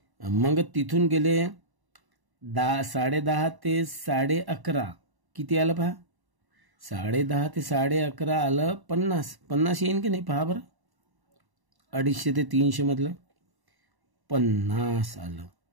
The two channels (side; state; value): left; late; 1.1 ms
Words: मग तिथून गेले 10:30 ते 11:30 किती आलं पहा? 10:30 ते 11:30 आलं 50 येईन की नाही पहा बरं. 250 ते 300 मधलं 50 आलं.